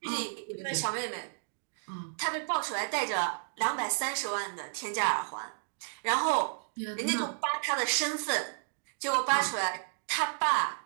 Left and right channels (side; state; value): left; silent; digital silence